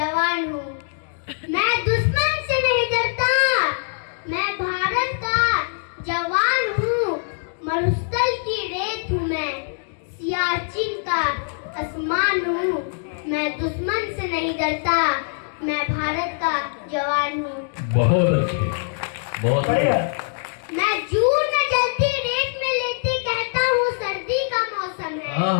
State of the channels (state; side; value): silent; right; digital silence